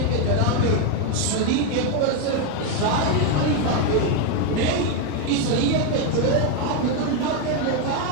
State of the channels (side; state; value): both; different; correlation 0.02